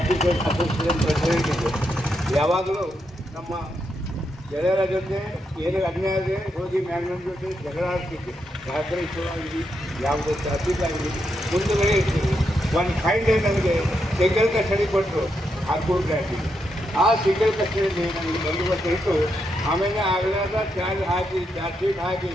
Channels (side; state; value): both; normal; correlation 0.82